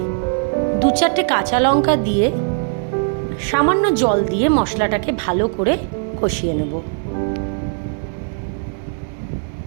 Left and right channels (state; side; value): silent; left; digital silence